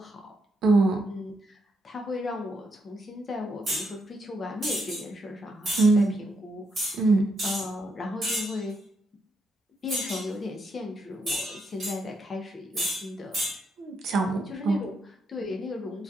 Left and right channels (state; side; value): normal; both; correlation 0.79